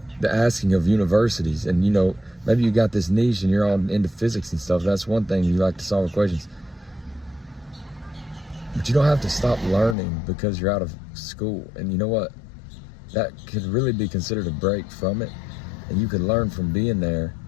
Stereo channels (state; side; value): drops out; right; at 10.0 s